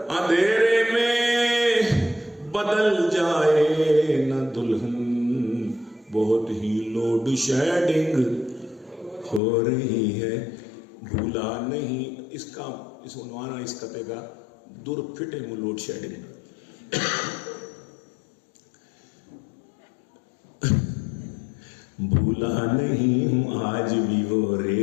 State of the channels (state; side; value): drops out; right; at 9.4 s